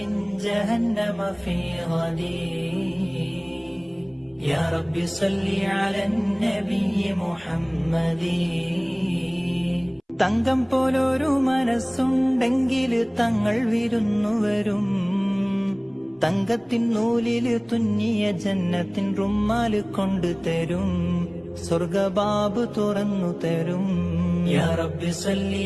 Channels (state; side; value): identical; both; correlation 1.00